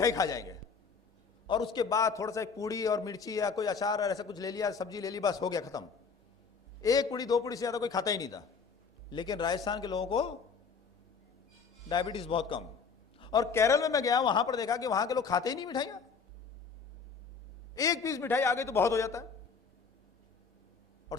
खा जाएंगे, और उसके बाद थोड़ा सा एक पूड़ी और मिर्ची या कोई अचार और ऐसा कुछ ले लिया, सब्जी ले ली, बस हो गया खत्म। 1 पूड़ी 2 पूड़ी से ज्यादा कोई खाता ही नहीं था। लेकिन राजस्थान के लोगों को डायबिटीज बहुत कम। और केरल में मैं गया, वहां पर देखा कि वहां के लोग खाते ही नहीं मिठाइयां। 1 पीस मिठाई आ गई तो बहुत हो जाता है। और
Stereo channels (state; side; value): quieter; right; 5.5 dB